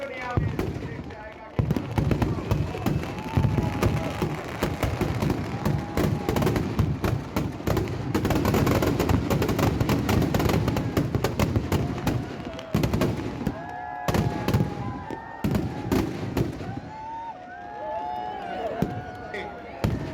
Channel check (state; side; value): identical; both; correlation 1.00